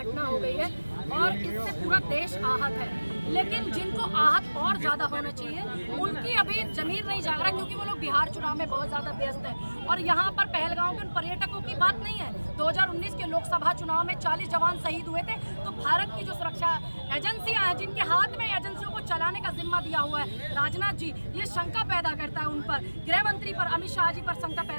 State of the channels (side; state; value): both; inverted; correlation -1.00